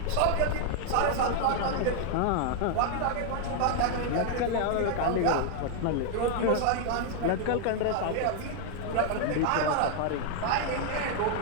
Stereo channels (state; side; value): different; both; correlation 0.00